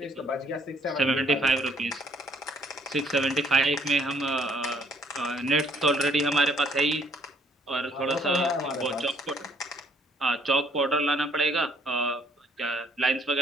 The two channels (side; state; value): both; normal; correlation 0.64